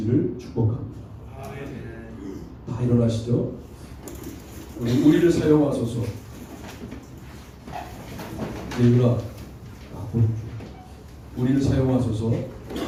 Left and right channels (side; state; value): both; identical; correlation 1.00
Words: 축복합니다. 다 일어나시죠. 우리를 사용하소서. 예유라, 우리를 사용하소서